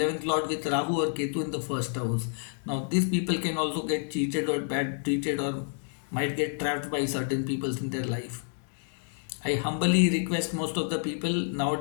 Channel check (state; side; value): silent; right; 59 dB below the other